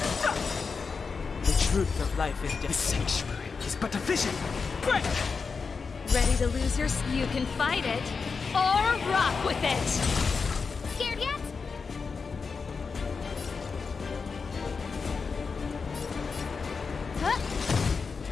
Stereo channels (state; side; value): quieter; right; 5.0 dB